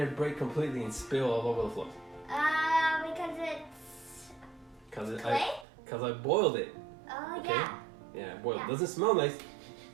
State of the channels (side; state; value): left; drops out; at 5.7 s